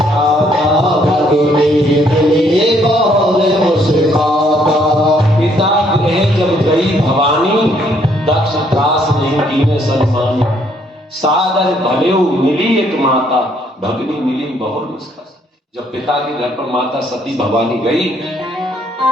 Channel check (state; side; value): normal; both; correlation 0.67